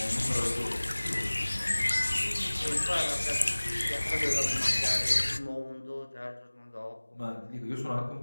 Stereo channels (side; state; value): both; inverted; correlation -1.00